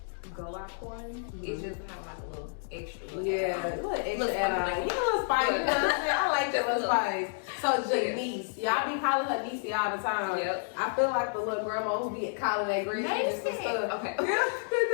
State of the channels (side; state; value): right; silent; digital silence